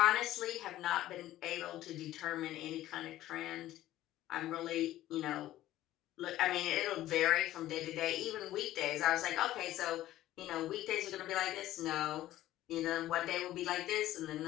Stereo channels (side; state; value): right; quieter; 14.4 dB